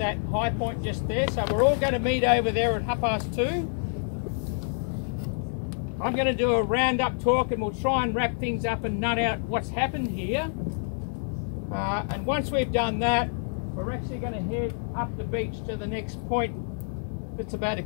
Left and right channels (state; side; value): silent; right; 60 dB below the other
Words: high point just there. So we're all going to meet over there at 2:30. I'm going to do a roundup talk and we'll try and wrap things up and nut out what's happened here. And once we've done that, we're actually going to head up the beach to the next point that's about 1